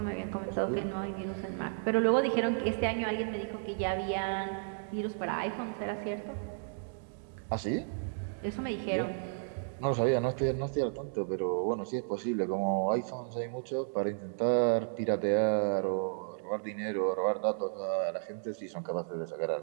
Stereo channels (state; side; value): silent; left; digital silence